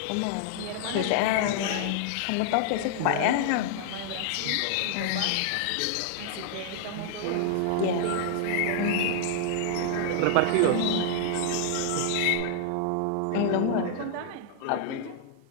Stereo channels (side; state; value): both; different; correlation -0.01